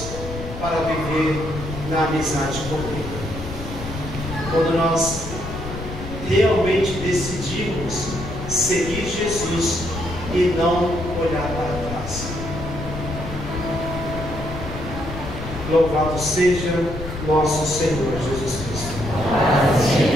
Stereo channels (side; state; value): left; noise; rumble, 9 dB below the sound